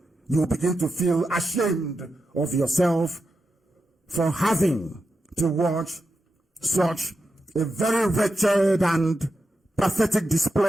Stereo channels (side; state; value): both; normal; correlation 0.88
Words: You will begin to feel ashamed of yourself for having to watch such a very wretched and pathetic